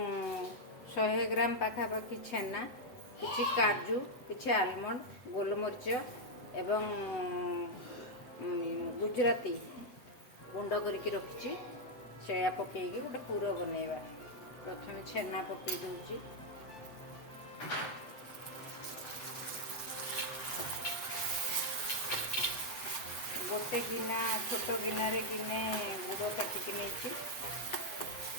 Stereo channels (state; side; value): late; right; 7.9 ms